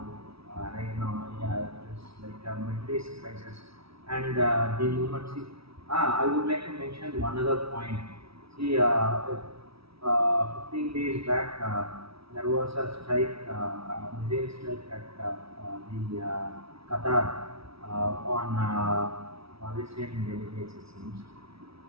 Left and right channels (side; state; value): left; late; 0.76 ms